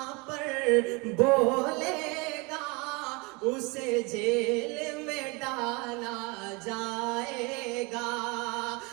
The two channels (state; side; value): quieter; left; 28.0 dB